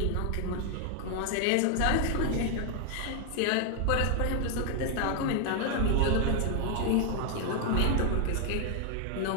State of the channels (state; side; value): different; both; correlation 0.00